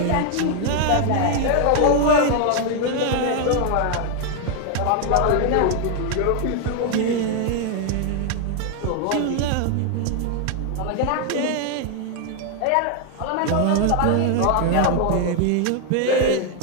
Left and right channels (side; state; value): both; different; correlation 0.00